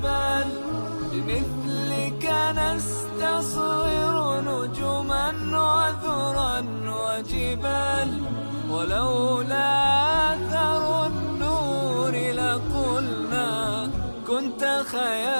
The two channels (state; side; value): inverted; both; correlation -1.00